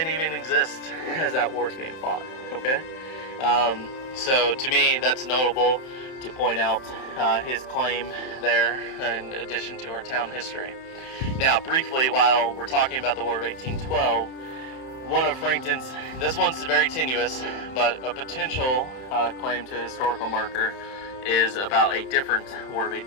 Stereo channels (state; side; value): late; right; 31 ms